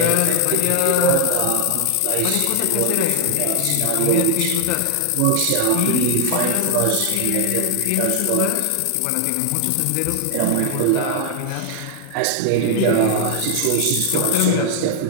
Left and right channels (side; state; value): both; different; correlation 0.00